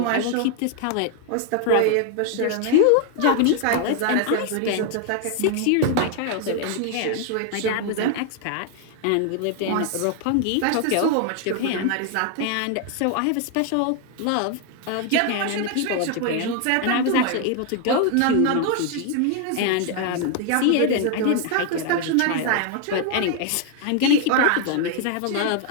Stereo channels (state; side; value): different; both; correlation 0.00